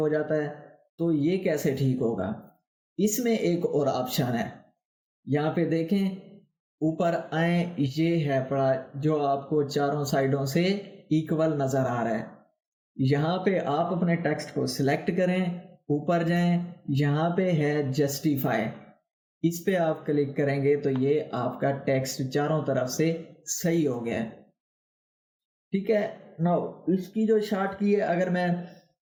جاتا ہے. تو یہ کیسے ٹھیک ہوگا؟ اس میں ایک اور آپشن ہے. یہاں پہ دیکھیں، اوپر آئیں، یہ ہے پڑا جو آپ کو چاروں سائڈوں سے ایکول نظر آ رہا ہے. یہاں پہ آپ اپنے ٹیکسٹ کو سلیکٹ کریں، اوپر جائیں، یہاں پہ ہے جسٹیفائی، اس پہ آپ کلک کریں گے تو یہ آپ کا ٹیکسٹ چاروں طرف سے صحیح ہو گیا. ٹھیک ہے. نو اس کی جو شارٹ کی ہے، اگر میں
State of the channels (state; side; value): identical; both; correlation 1.00